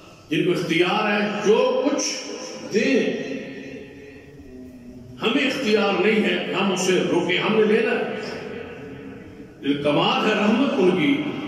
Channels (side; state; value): both; identical; correlation 1.00